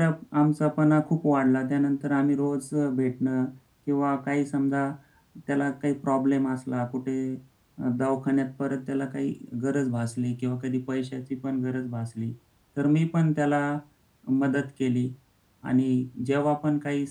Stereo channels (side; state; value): both; identical; correlation 1.00